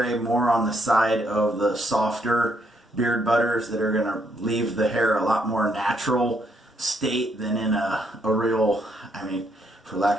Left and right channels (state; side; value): normal; both; correlation 0.73